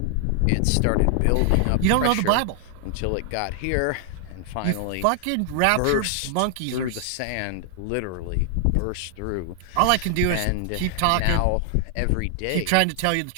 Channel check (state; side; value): different; both; correlation 0.00